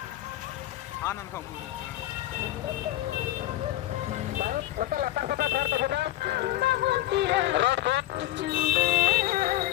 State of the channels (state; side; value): quieter; right; 14.8 dB